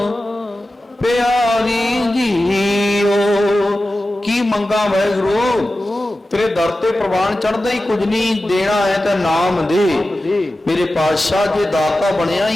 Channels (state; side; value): normal; both; correlation 0.94